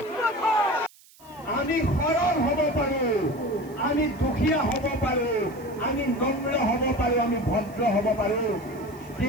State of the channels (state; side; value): noise; right; hiss, 26 dB below the sound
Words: আমি সৰল হ'ব পাৰোঁ, আমি দুখীয়া হ'ব পাৰোঁ, আমি নম্ৰ হ'ব পাৰোঁ, আমি ভদ্ৰ হ'ব পাৰোঁ,